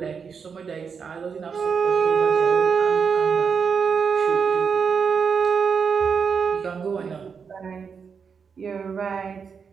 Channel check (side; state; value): left; quieter; 6.1 dB